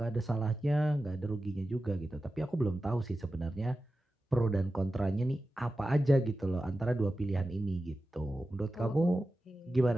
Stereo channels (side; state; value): both; normal; correlation 0.93